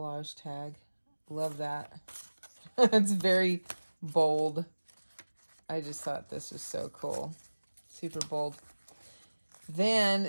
tag. Love that. It's very bold. I just thought this was so cool. Super bold.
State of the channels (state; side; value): inverted; both; correlation -1.00